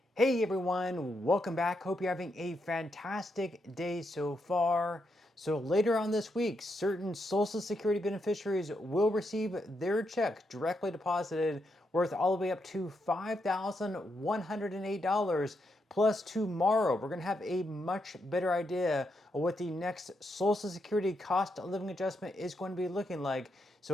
Hey everyone, welcome back. Hope you're having a fantastic day so far. So later on this week, certain Social Security beneficiaries will receive their check directly deposited worth all the way up to $5,108. Plus tomorrow, we're going to have a much better idea of what the next Social Security cost of living adjustment is going to be looking like.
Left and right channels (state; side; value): normal; both; correlation 0.81